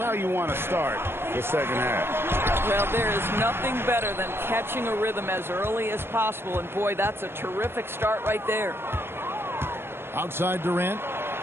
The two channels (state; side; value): late; left; 0.11 ms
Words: you want to start the second half. Well, there is nothing better than catching a rhythm as early as possible. And, boy, that's a terrific start right there. Outside Durant